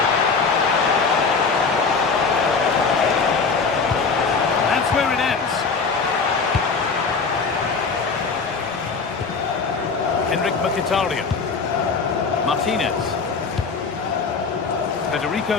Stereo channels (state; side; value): quieter; right; 4.8 dB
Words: That's where it ends. Henrik Mkhitaryan. Martinez. Federico